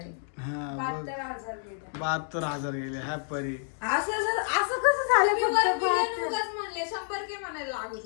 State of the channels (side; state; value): right; silent; digital silence